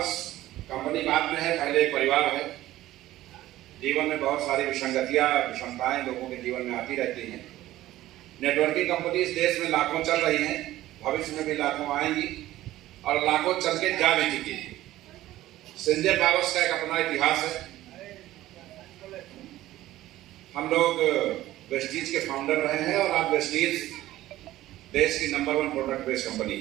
कंपनी बाद में है, पहले एक परिवार है। जीवन में बहुत सारी विसंगतियां, विषमताएं लोगों के जीवन में आती रहती हैं। नेटवर्किंग कंपनी इस देश में लाखों चल रही हैं, भविष्य में भी लाखों आएंगी और लाखों चल के जा भी चुकी है। संजय पावर्स का एक अपना इतिहास है। हम लोग वेस्टीज के फाउंडर रहे हैं और आज वेस्टीज देश की नंबर 1 प्रोडक्ट बेस्ड कंपनी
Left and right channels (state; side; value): quieter; left; 15.2 dB